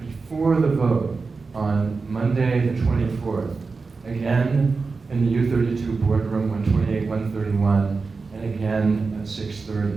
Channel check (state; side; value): quieter; left; 4.4 dB